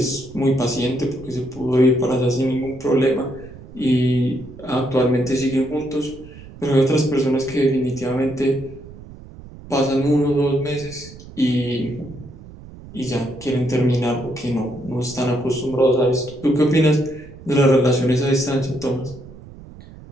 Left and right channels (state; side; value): noise; right; rumble, 17 dB below the sound